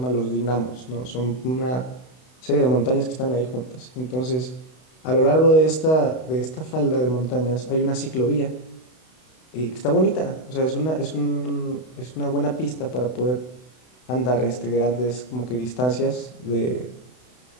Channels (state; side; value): late; right; 32 ms